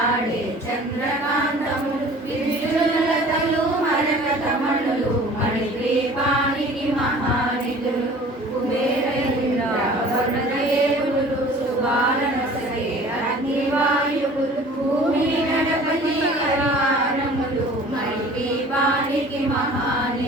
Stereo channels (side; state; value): both; normal; correlation 0.47